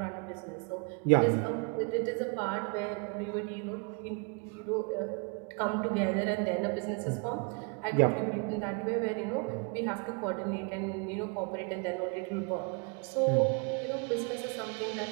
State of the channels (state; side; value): quieter; left; 34.6 dB